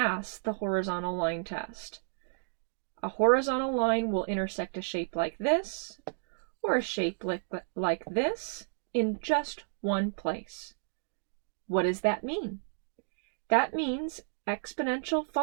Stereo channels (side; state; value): left; silent; digital silence